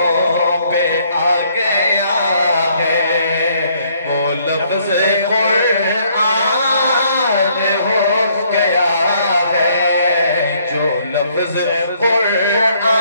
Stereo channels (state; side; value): inverted; both; correlation -0.67